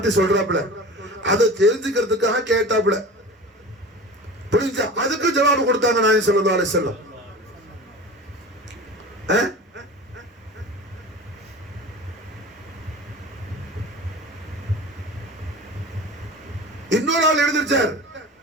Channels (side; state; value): both; normal; correlation 0.35